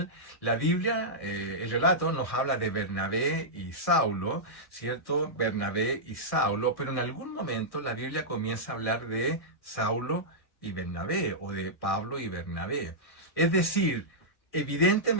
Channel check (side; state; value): right; late; 1.6 ms